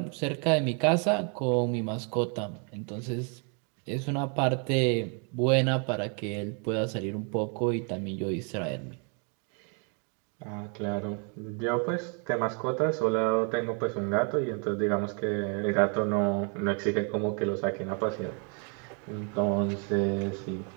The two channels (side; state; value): left; quieter; 38.7 dB